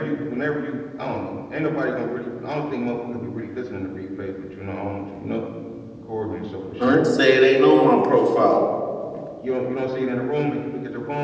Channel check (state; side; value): identical; both; correlation 1.00